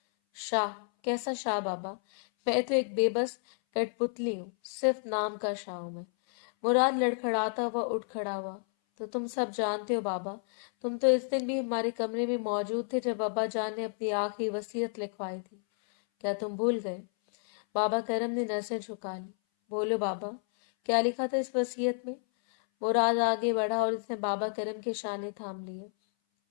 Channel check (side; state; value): right; silent; 57 dB below the other